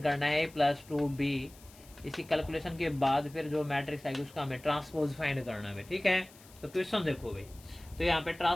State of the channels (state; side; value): noise; left; hiss, 23 dB below the sound